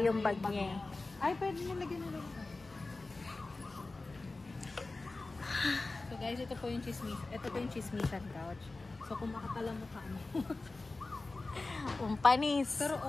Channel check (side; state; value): right; quieter; 3.4 dB